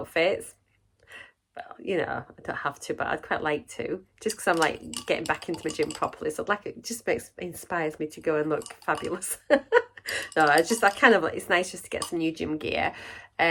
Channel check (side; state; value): both; identical; correlation 1.00